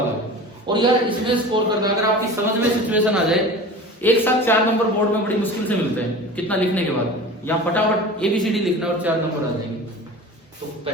आ गया। और यार इसमें स्कोर करना, अगर आपकी समझ में सिचुएशन आ जाए, एक साथ 4 नंबर बोर्ड में बड़ी मुश्किल से मिलते हैं। कितना लिखने के बाद यहाँ फटाफट ABCD लिखना और 4 नंबर आ जाएंगे। तो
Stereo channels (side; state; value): both; normal; correlation 0.36